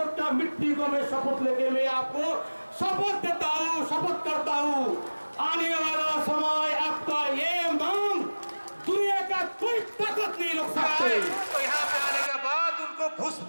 मिट्टी को मैं शपथ लेके मैं आपको शपथ देता हूँ, शपथ करता हूँ, आने वाला समय आपका ये मांग दुनिया का कोई ताकत नहीं रोक सकते। तो यहाँ पे आने के बाद उनको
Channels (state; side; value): inverted; both; correlation -1.00